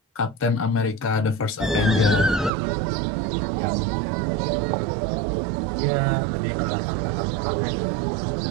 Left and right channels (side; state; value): left; drops out; at 2.5 s